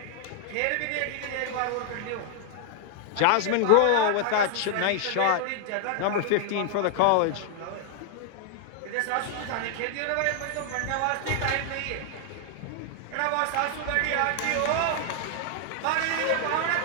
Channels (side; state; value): both; different; correlation 0.00